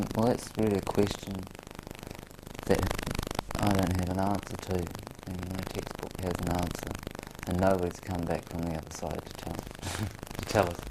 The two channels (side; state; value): both; identical; correlation 1.00